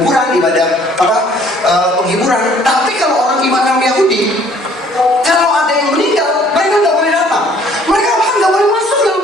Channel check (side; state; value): both; normal; correlation 0.58